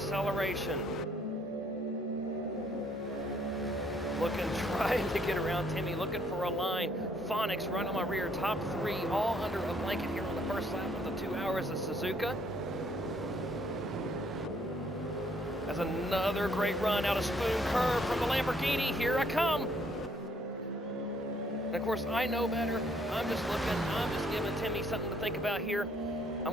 Looking, trying to get around Timmy, looking for a line. Phonics right on my rear, top three, all under a blanket here on the first lap of the 2 hours of Suzuka. That's another great run out of Spoon Curve from the Lamborghini. Here I come. And of course, I know better. I'm just looking, I'm just giving Timmy something to think about here. I'm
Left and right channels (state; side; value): normal; both; correlation 0.66